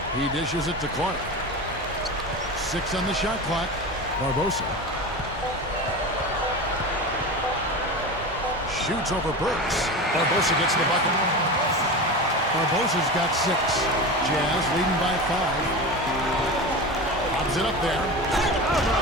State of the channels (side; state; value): both; normal; correlation 0.27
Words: He dishes it to Clark. 6 on the shot clock. Barbosa. Shoots over Burks. Barbosa gets the bucket. Barbosa's got 6. Jazz leading by 5. Lobs it up there. How